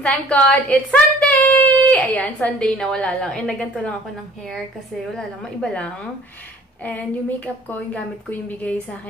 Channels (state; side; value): normal; both; correlation 0.51